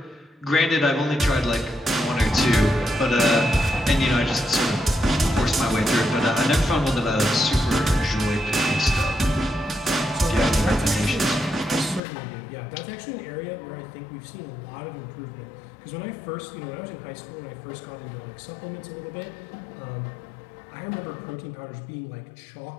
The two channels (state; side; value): drops out; right; at 12.0 s